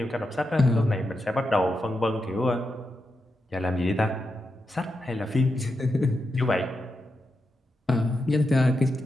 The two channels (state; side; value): normal; both; correlation 0.87